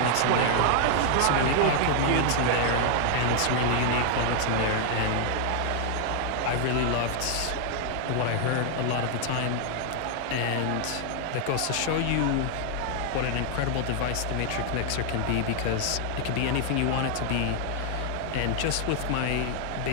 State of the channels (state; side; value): different; both; correlation 0.00